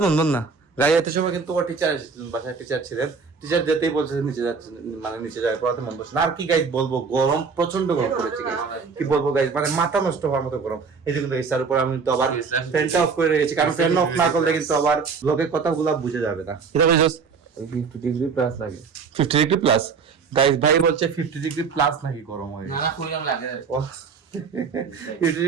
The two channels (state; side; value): quieter; left; 5.3 dB